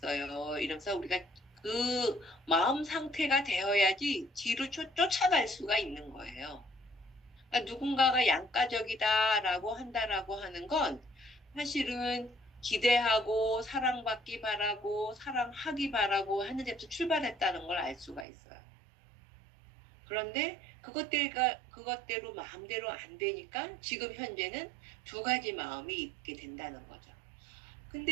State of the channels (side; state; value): left; drops out; at 18.2 s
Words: 이러면서 우리가 그 마음 상태가 되어야지 뒤로 쫓아갈 수가 있는 거예요. 그러니까 누군가가 양가적이다라고 한다라고 하는 건 사실은 기대하고 사랑받기 바라고 사랑하기 바라고 하는 데서 출발했다는 걸 알 수가 있어요. 그런데 그것대로 마음대로 안 되니까 지금 현재는 두 가지 마음이 있게 된다는 거죠.